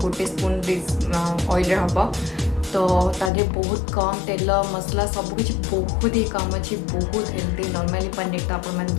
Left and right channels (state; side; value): drops out; right; at 3.3 s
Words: स्पून ऑयल रे हम तो तादे बहुत कम तेल मसला सबकि बहुत ही कम अच्छी बहुत हेल्दी। नॉर्मली पनीर तो आप